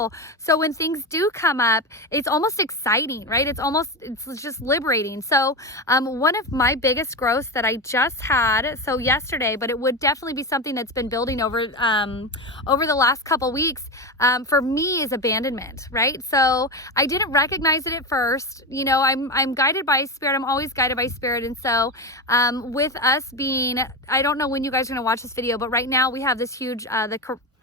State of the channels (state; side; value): normal; both; correlation 0.18